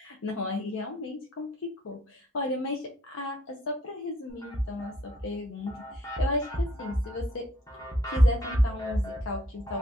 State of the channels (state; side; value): normal; both; correlation 0.64